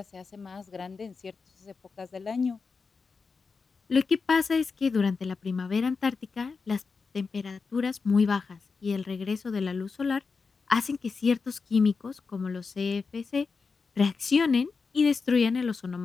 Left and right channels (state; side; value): quieter; right; 4.8 dB